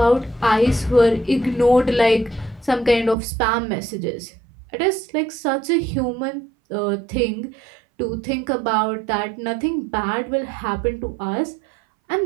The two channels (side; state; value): left; drops out; at 3.2 s